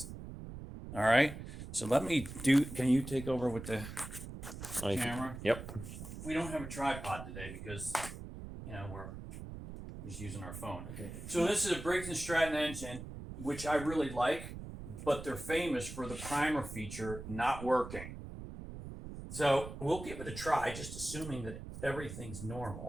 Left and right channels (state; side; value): noise; right; rumble, 10 dB below the sound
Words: All right. So can you take over with the camera? Yep. We don't have a tripod today because, we're just using our phone. Okay. So this is a Briggs Stratton engine, which I really like, but they're famous for the primer feature not working. So we'll give it a try, just assuming that everything's